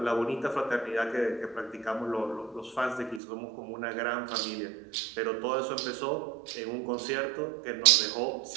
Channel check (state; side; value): drops out; left; at 3.2 s